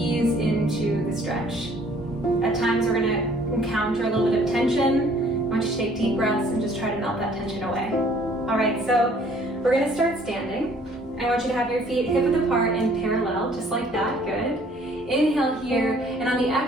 into the stretch. At times we're going to encounter a little bit of tension. I want you to take deep breaths and just try to melt that tension away. All right, so we're going to start standing. I want you to have your feet hip-width apart and parallel, just like that. Good. Inhale here, and on the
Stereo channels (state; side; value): normal; both; correlation 0.58